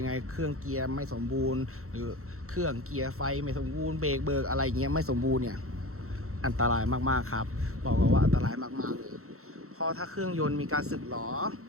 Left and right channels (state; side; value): late; left; 0.63 ms